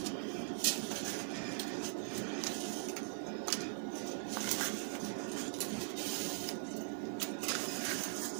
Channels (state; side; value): silent; left; 50 dB below the other